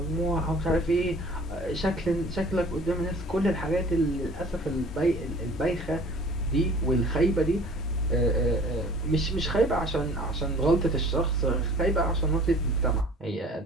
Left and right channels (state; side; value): normal; both; correlation 0.48